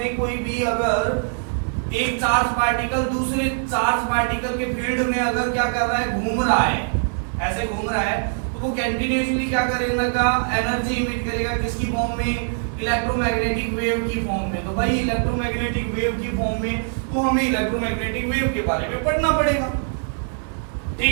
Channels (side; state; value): left; silent; digital silence